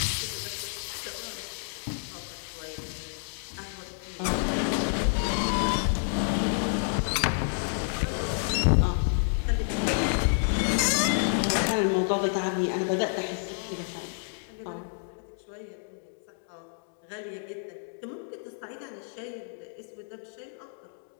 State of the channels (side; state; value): right; silent; digital silence